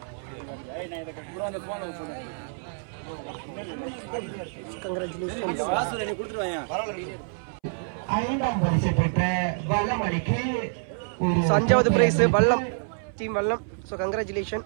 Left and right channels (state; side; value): silent; left; 60 dB below the other